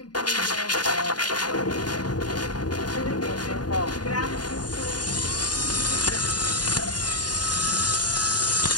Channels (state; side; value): late; right; 0.70 ms